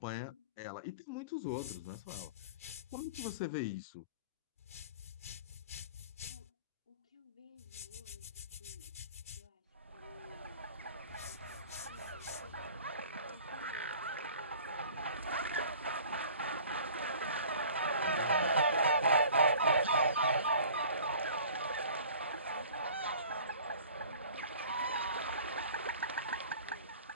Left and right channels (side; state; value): both; inverted; correlation -0.46